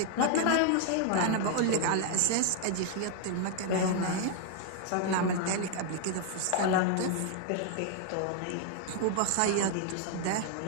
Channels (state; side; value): different; both; correlation 0.00